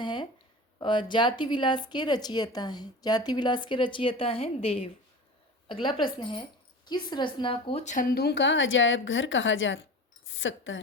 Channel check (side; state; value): both; normal; correlation 0.33